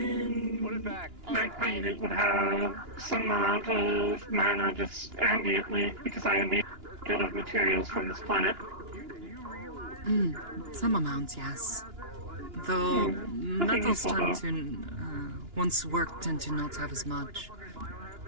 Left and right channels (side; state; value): left; late; 2.9 ms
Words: it back. My planet would have some amount of mana just ambiently because I am made of materials from this planet. Some amount, yes. Though metals tend to, once worked, tend to not have as much.